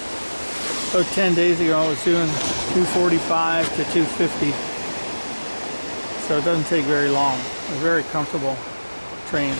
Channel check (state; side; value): inverted; both; correlation -1.00